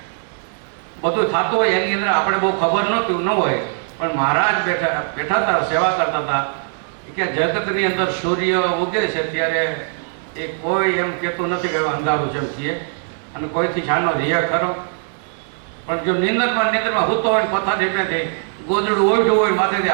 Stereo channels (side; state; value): left; silent; 58 dB below the other